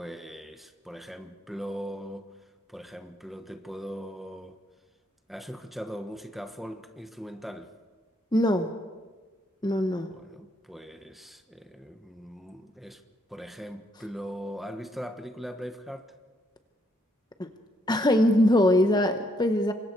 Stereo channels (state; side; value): normal; both; correlation 0.73